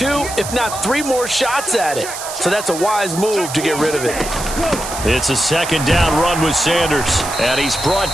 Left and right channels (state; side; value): noise; right; hiss, 9 dB below the sound